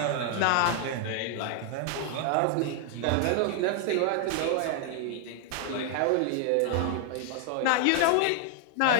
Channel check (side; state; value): both; different; correlation 0.00